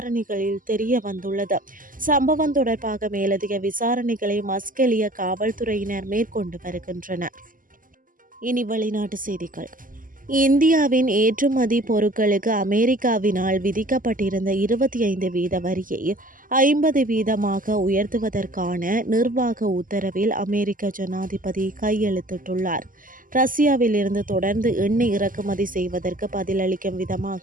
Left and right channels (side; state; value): left; late; 0.40 ms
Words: தெரிய வந்துள்ளது. சம்பவம் தொடர்பாக மேலதிக விசாரணைகளை மஸ்கெலியா காவல்துறையினர் மேற்கொண்டு வருகின்றனர். இனி வெளிநாட்டு செய்திகள். இந்தியாவின் ஏற்றுமதி பொருட்களுக்கு அமெரிக்காவினால் விதிக்கப்பட்டிருந்த 25% வரியை 50% உயர்த்துவதற்கான நிர்வாக உத்தரவில் அமெரிக்க ஜனாதிபதி கையெழுத்திட்டுள்ளார். ரஷ்யாவில் இருந்து தொடர்ந்து எண்ணெய் இறக்குமதி செய்வதற்கு பதிலளிக்கும்